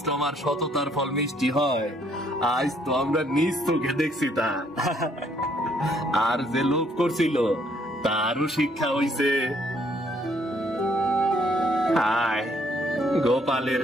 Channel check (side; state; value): both; normal; correlation 0.67